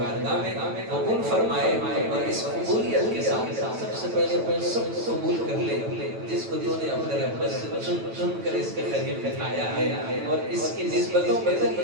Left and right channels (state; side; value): late; left; 9.1 ms